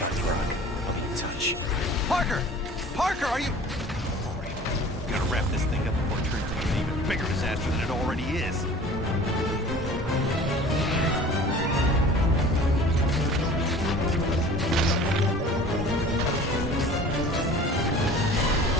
the rug. I'll be in touch. Parker! Parker, are you... All right, gotta wrap this thing up before it turns into an even bigger disaster than it already is.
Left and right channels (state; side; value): normal; both; correlation 0.45